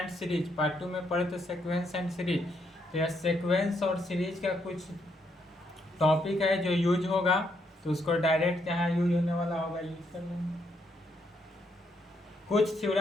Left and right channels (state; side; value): normal; both; correlation 0.75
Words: सीरीज। पार्ट 2 में पढ़े थे सीक्वेंस एंड सीरीज। तो यह सीक्वेंस और सीरीज का कुछ टॉपिक है जो यूज होगा। तो उसको डायरेक्ट जहाँ यूज होने वाला होगा यूज कर लेंगे। कुछ